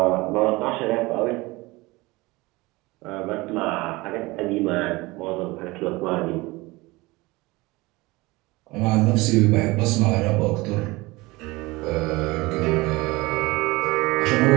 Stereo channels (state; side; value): quieter; left; 22.2 dB